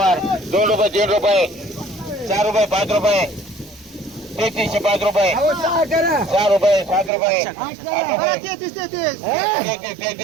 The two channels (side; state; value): left; drops out; at 7.1 s